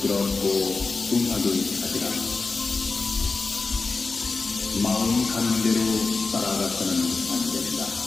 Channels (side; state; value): right; quieter; 4.0 dB